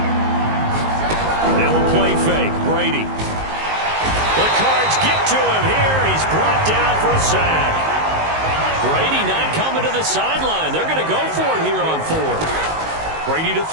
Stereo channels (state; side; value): late; left; 19 ms